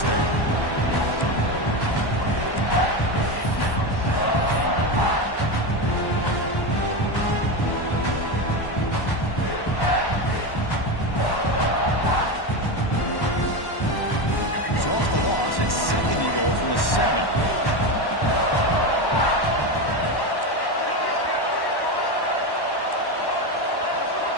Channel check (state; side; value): late; right; 1.1 ms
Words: there. It's 2nd and goal from the 7.